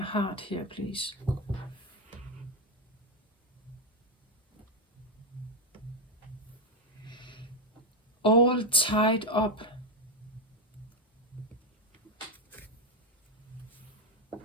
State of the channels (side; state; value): both; normal; correlation 0.07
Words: heart here, please? All tied up.